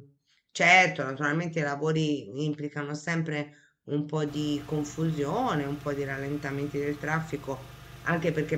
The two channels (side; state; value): both; identical; correlation 1.00